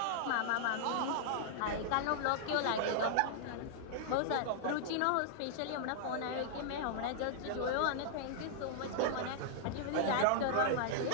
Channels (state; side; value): different; both; correlation -0.01